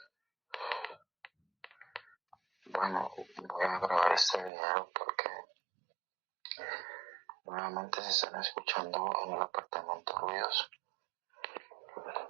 Bueno, voy a grabar este video porque nuevamente se están escuchando en el apartamento ruidos.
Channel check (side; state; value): left; drops out; at 4.5 s